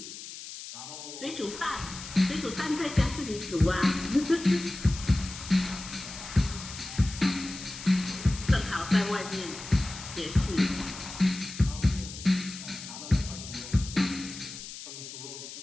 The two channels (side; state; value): left; noise; hiss, 11 dB below the sound